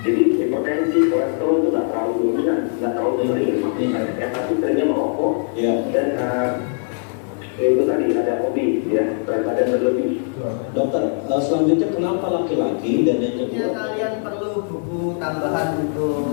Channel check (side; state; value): right; silent; 60 dB below the other